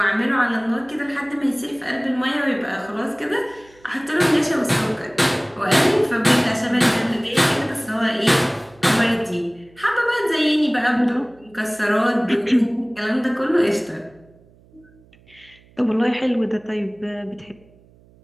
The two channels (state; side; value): noise; right; hum, 28 dB below the sound